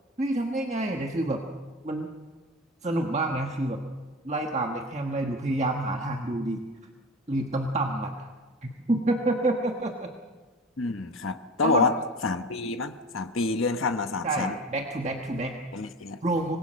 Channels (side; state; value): both; normal; correlation 0.33